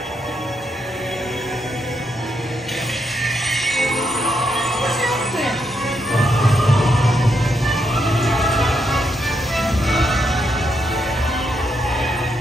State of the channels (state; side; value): normal; both; correlation 0.80